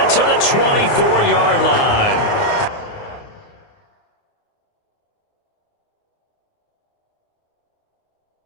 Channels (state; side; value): late; right; 29 ms